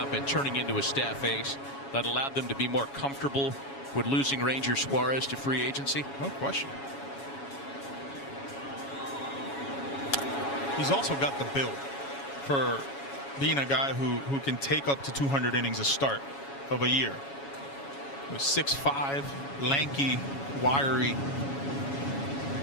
and turning into a staff ace that allowed them to be more comfortable with losing Ranger Suarez to free agency? No question. He's also got the build for being a guy who can take up to 200 innings a start of a year. 6'5", lanky, wiry.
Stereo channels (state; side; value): late; right; 7.2 ms